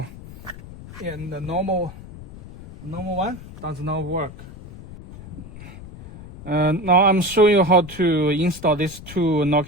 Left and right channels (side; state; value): left; noise; rumble, 15 dB below the sound